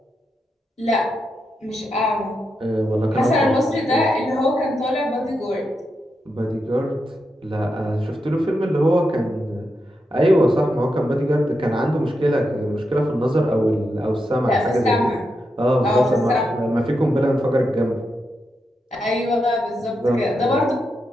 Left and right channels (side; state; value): both; normal; correlation 0.85